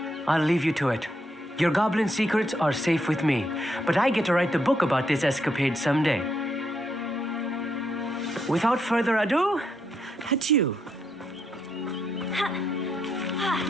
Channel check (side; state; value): both; normal; correlation 0.78